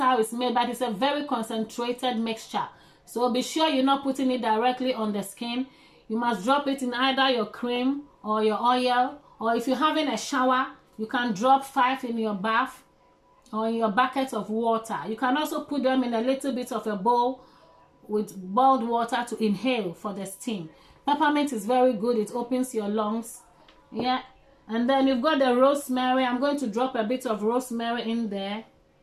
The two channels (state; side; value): identical; both; correlation 1.00